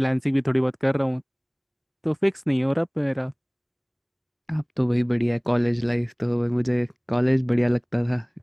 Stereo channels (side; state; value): both; identical; correlation 1.00